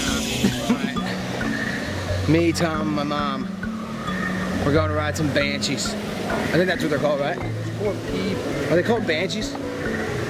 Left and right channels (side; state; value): both; identical; correlation 1.00